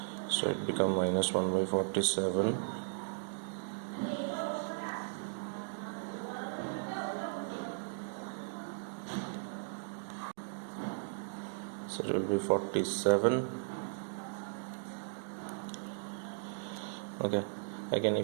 so it become minus 1 by 47 so it will be 47. Okay, again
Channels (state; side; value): silent; left; digital silence